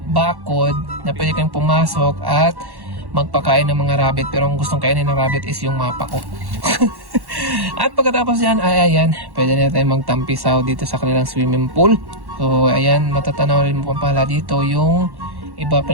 bakod na pwede kang pumasok at magpakain ng mga rabbit. Pero ang gustong kainin ng rabbit is yung mapa ko. At pagkatapos yan ay ayan, pwede na tayo magtampisaw dito sa kanilang swimming pool. So ayan, matatanaw rin mo pala dito yung iba pa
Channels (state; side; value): late; left; 1.1 ms